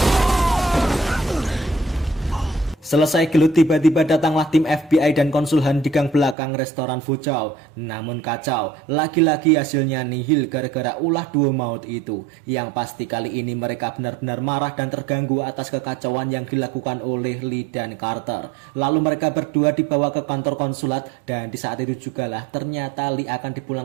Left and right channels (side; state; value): left; drops out; at 6.4 s